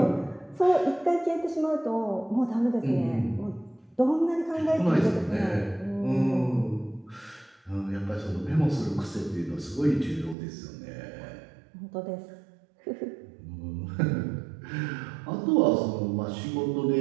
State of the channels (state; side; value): drops out; left; at 10.4 s